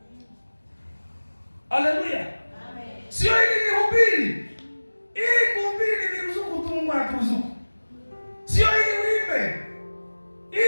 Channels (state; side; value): inverted; both; correlation -1.00